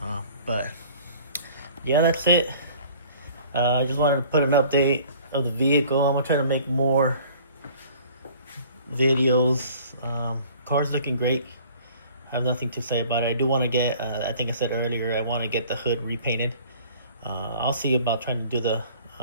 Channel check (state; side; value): inverted; both; correlation -0.51